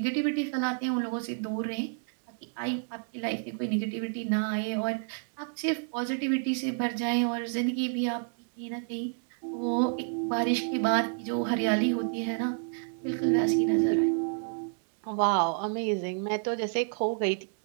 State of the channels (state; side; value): silent; left; 58 dB below the other